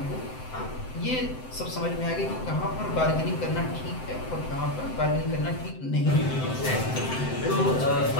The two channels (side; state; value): right; late; 7.8 ms